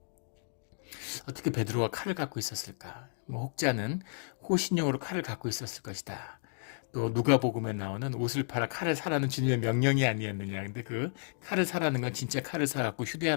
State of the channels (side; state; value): right; silent; digital silence